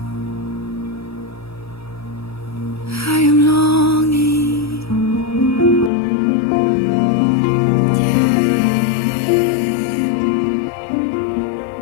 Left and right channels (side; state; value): right; drops out; at 5.9 s